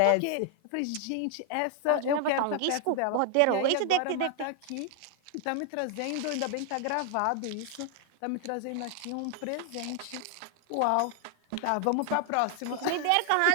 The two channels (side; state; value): both; different; correlation 0.00